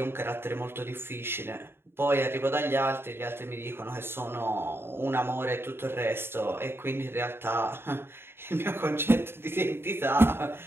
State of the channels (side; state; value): left; late; 0.11 ms